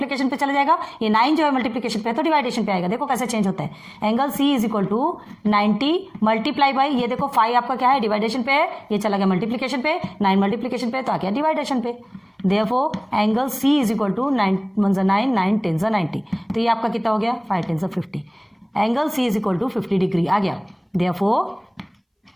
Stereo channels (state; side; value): identical; both; correlation 1.00